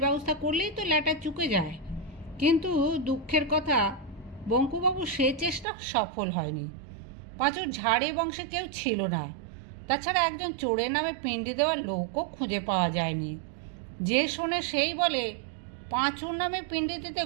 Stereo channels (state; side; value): drops out; left; at 5.7 s